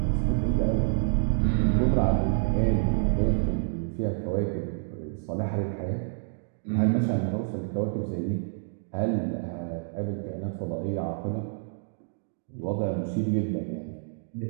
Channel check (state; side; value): silent; left; 59 dB below the other